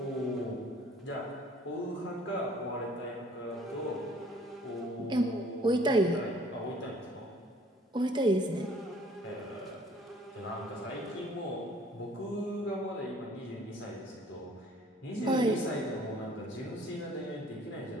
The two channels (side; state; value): both; normal; correlation 0.56